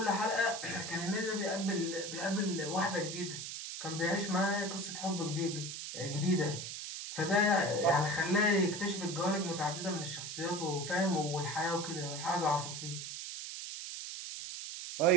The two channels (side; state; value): right; noise; hiss, 7 dB below the sound